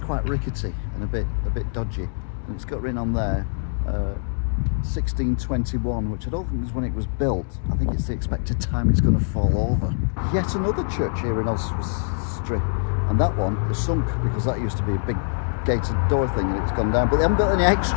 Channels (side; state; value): right; silent; digital silence